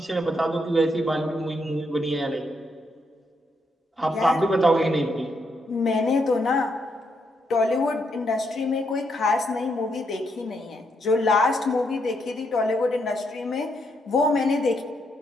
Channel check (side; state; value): both; normal; correlation 0.78